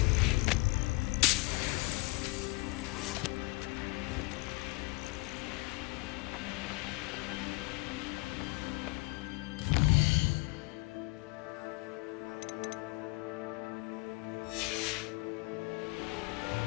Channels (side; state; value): right; quieter; 25.3 dB